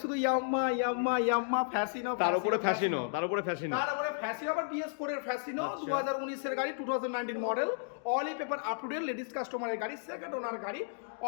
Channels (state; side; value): silent; right; digital silence